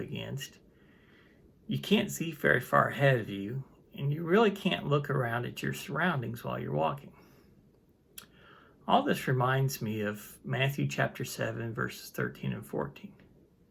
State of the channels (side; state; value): both; identical; correlation 1.00